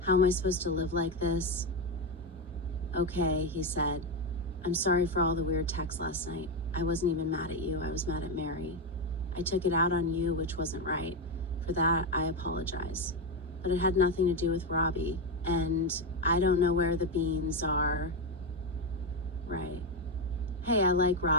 How am I supposed to live like this?" "Okay," he said. "I'm sorry for all the weird texts last night. I wasn't even mad at you. I was mad at Mary. I took it out on you, which wasn't right. For that, I apologize. But it had nothing to do with Robbie. And I don't know where the beans are." "Right. Hey, I like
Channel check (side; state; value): both; normal; correlation 0.10